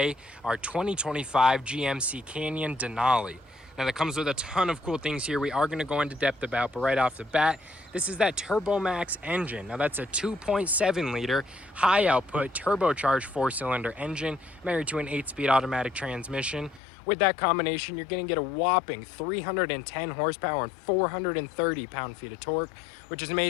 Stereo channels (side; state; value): right; drops out; at 16.8 s